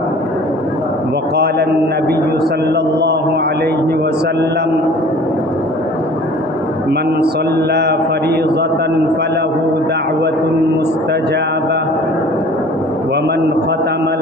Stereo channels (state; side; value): normal; both; correlation 0.48